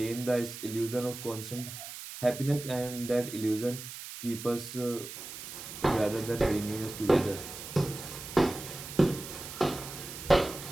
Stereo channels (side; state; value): right; noise; hiss, 11 dB below the sound